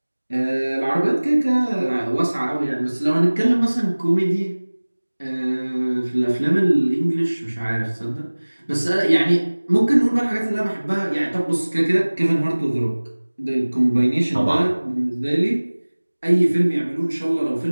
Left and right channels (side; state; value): both; inverted; correlation -1.00